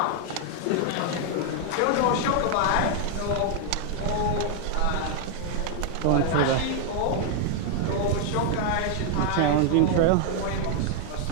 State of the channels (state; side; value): different; both; correlation 0.00